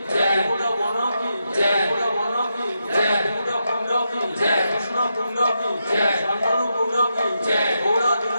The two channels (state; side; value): inverted; both; correlation -0.85